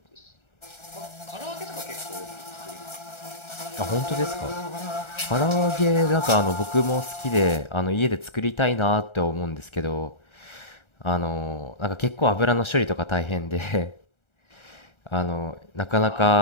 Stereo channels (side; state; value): right; late; 1.3 ms